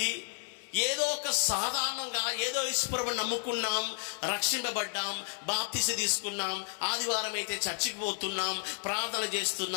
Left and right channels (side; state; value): right; silent; 56 dB below the other